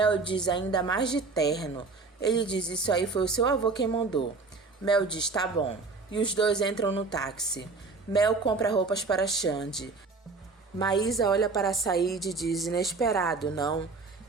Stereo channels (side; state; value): left; quieter; 4.1 dB